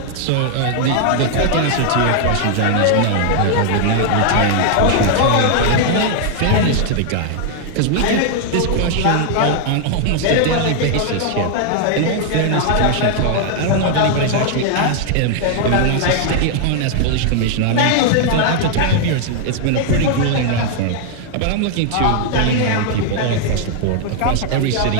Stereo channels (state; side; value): different; both; correlation 0.00